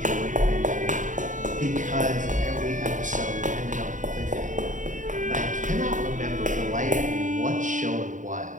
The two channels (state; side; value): late; left; 0.37 ms